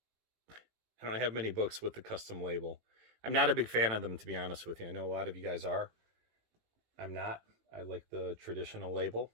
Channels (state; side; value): late; left; 18 ms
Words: I don't have many books with the custom label. I'm not a big fan of them, to be honest with you. I know a lot of you guys are. I'm not. I like the traditional label.